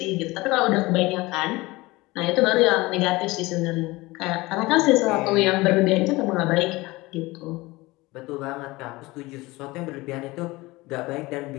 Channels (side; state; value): right; quieter; 21.3 dB